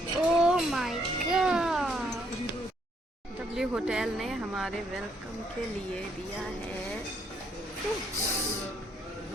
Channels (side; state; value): both; normal; correlation 0.71